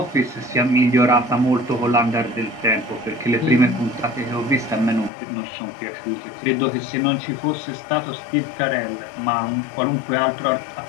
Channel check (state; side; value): drops out; right; at 5.1 s